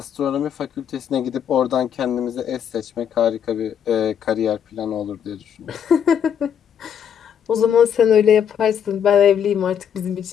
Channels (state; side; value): quieter; right; 8.5 dB